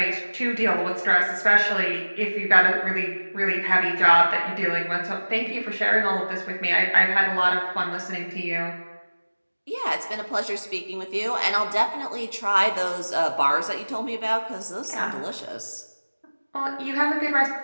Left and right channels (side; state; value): both; inverted; correlation -1.00